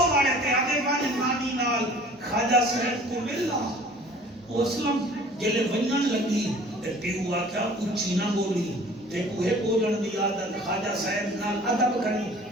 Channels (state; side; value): normal; both; correlation 0.49